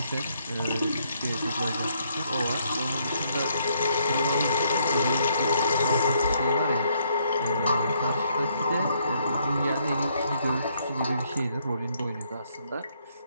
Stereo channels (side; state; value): both; inverted; correlation -0.71